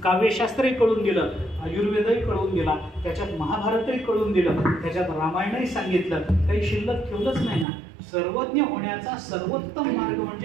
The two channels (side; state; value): left; drops out; at 7.7 s